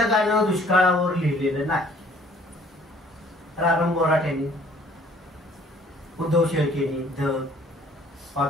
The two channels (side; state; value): both; normal; correlation 0.57